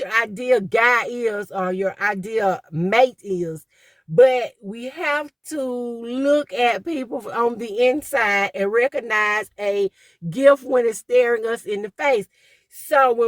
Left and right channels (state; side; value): identical; both; correlation 1.00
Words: ideal guy is or your ideal mate is. But we have to look at people on the inside and recognize a gift when it's staring us in the face. So